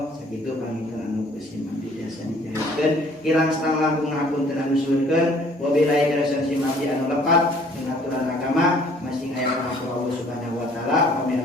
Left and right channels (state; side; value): normal; both; correlation 0.57